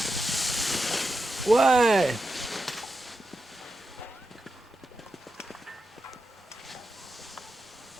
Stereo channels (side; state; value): both; normal; correlation 0.89